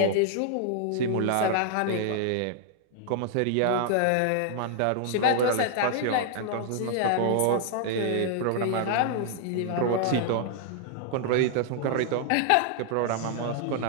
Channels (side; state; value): both; different; correlation 0.00